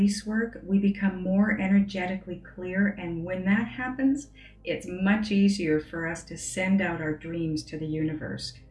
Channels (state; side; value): identical; both; correlation 1.00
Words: work, we become more energetically clear, and when that happens, it's much easier for us to send out our dreams to the universe.